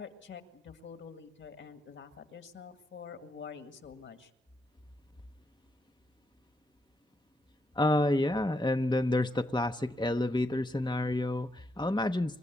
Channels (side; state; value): both; normal; correlation 0.80